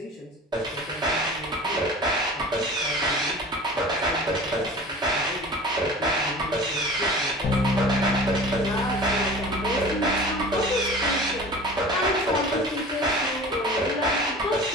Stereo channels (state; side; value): normal; both; correlation 0.40